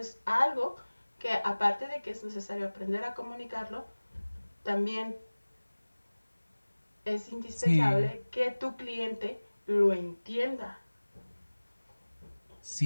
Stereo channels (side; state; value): both; inverted; correlation -1.00